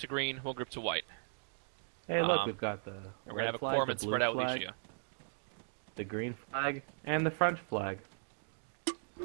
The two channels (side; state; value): left; silent; digital silence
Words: green, 1 group to white. Hey, look, we've got the And we're going red to have a flag, the corpsman blue spread out with flag, each of you. the green flag, and the French flag.